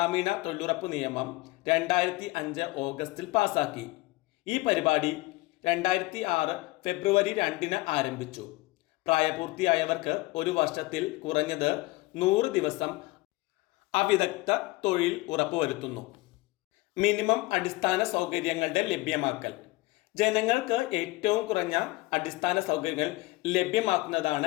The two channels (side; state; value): right; quieter; 21.2 dB